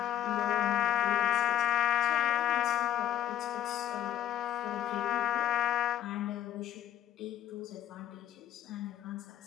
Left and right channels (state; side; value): quieter; right; 11.8 dB